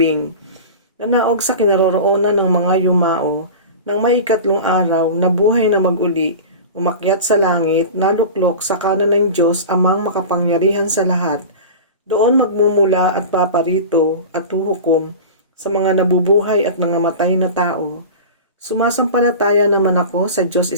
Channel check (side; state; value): both; inverted; correlation -0.31